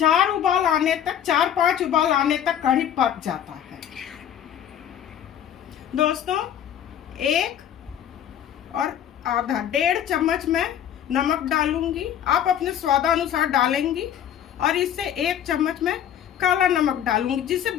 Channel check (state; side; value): quieter; right; 9.8 dB